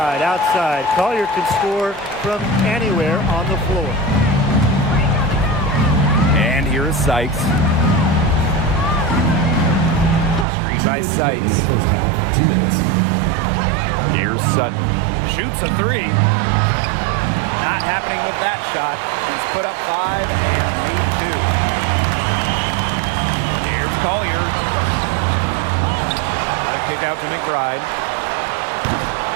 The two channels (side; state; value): left; drops out; at 10.5 s